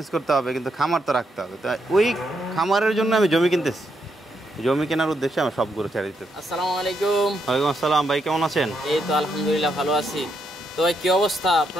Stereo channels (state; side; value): normal; both; correlation 0.79